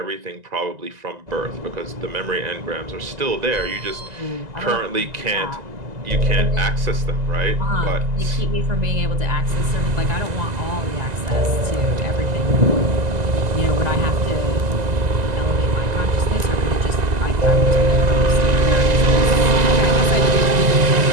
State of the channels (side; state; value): left; late; 2.0 ms